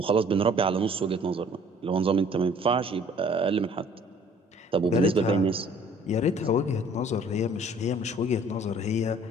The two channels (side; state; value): both; normal; correlation 0.55